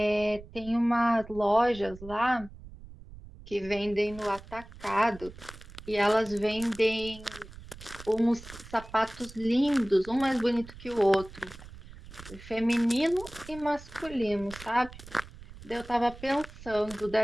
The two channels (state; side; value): noise; right; rumble, 17 dB below the sound